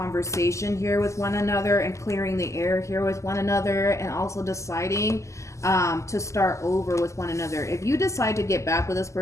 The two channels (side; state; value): right; late; 0.14 ms